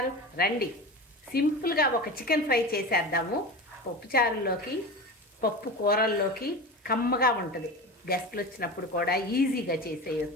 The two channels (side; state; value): both; normal; correlation 0.28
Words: రండి, సింపుల్గా ఒక చికెన్ ఫ్రై చేసేద్దాము. పప్పు చారుల్లోకి, పప్పు కూరల్లోకి కమ్మగా ఉంటుంది. గెస్ట్లు వచ్చినప్పుడు కూడా ఈజీగా